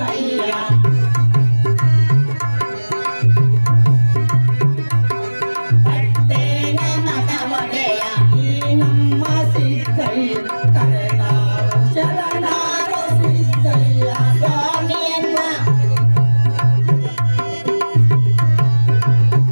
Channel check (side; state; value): both; inverted; correlation -1.00